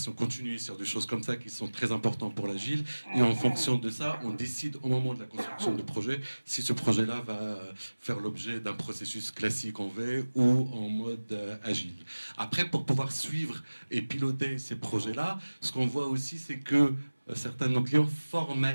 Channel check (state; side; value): inverted; both; correlation -1.00